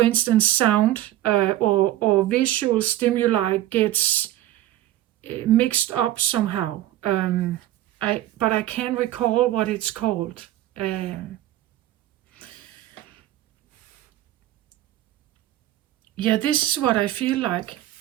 instance sound or visual stimuli gets mixed up somehow. But I can't recall what it's called. This is what I feel like.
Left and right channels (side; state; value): left; quieter; 14.2 dB